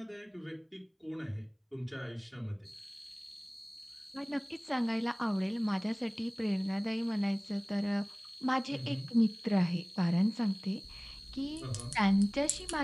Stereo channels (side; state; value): both; identical; correlation 1.00